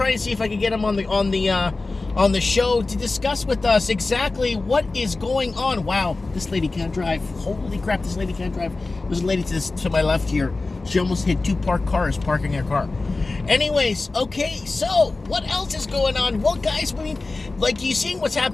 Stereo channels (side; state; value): right; quieter; 3.4 dB